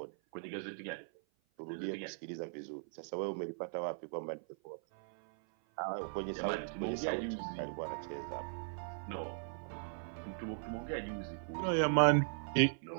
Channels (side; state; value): left; silent; 52 dB below the other